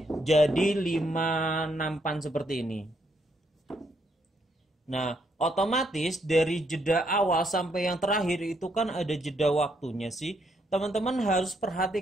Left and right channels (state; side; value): normal; both; correlation 0.74